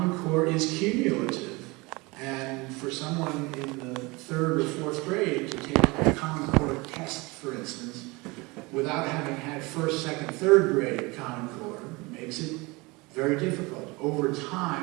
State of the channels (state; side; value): quieter; left; 24.8 dB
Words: Core is cumulative. And for someone in the 3rd or 4th grade to take a Common Core test, for instance, without having had 1st, 2nd, 3rd grade Common Core makes it very difficult. Over